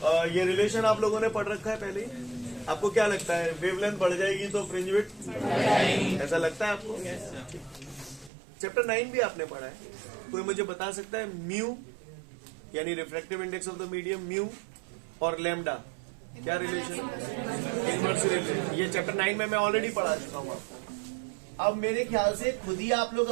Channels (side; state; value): left; drops out; at 8.3 s